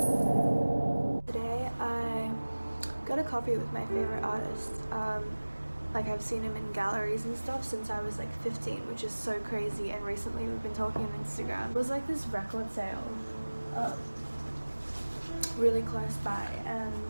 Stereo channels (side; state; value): both; inverted; correlation -1.00